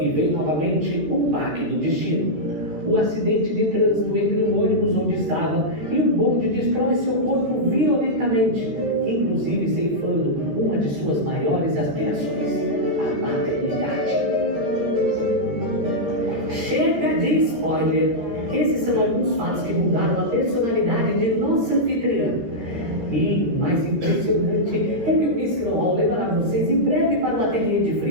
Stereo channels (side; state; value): left; late; 13 ms